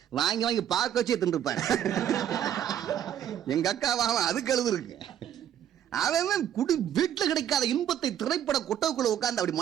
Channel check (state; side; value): quieter; left; 10.3 dB